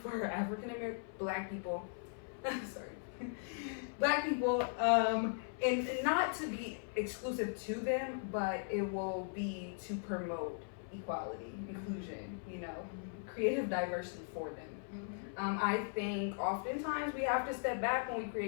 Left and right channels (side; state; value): right; silent; 52 dB below the other